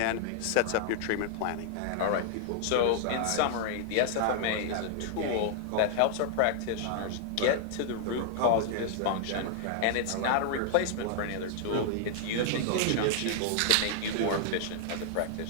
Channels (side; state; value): both; different; correlation -0.01